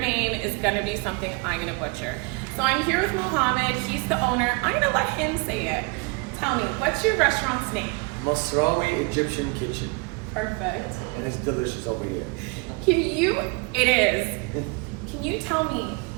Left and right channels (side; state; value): left; quieter; 29.6 dB